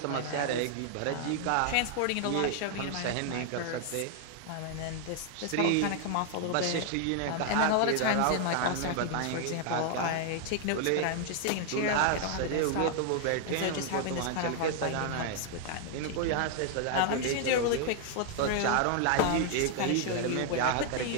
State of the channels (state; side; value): different; both; correlation 0.00